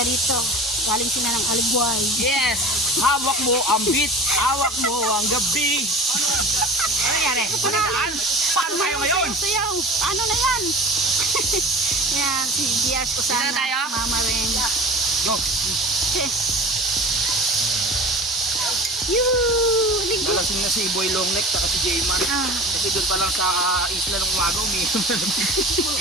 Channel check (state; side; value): normal; both; correlation 0.36